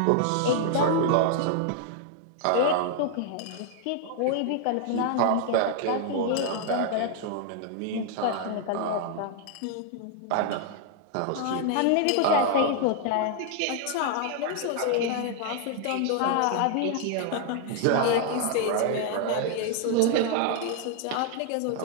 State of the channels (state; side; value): different; both; correlation 0.00